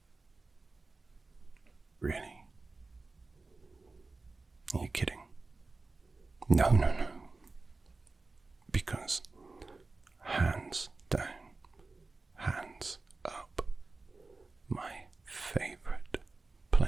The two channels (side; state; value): left; quieter; 3.6 dB